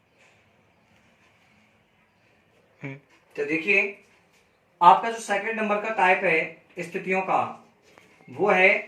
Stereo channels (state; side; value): identical; both; correlation 1.00